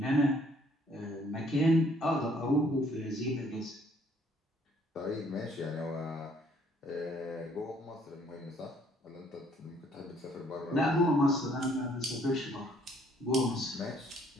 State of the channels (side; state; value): both; normal; correlation 0.63